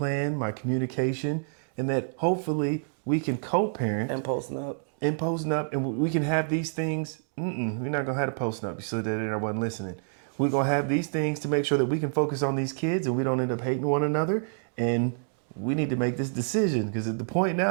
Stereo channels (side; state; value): left; silent; digital silence